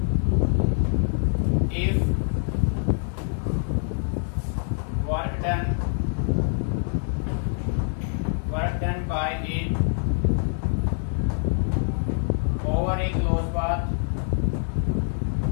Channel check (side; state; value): right; silent; 62 dB below the other